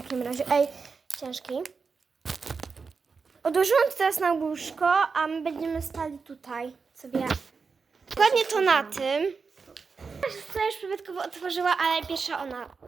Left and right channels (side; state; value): left; quieter; 5.0 dB